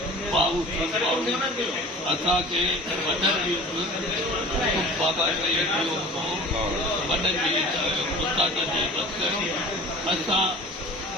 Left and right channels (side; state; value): both; normal; correlation 0.42